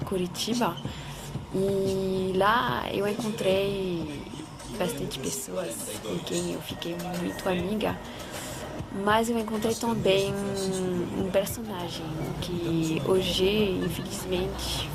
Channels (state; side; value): identical; both; correlation 1.00